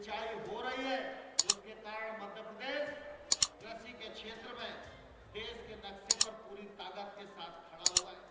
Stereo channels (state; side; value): identical; both; correlation 1.00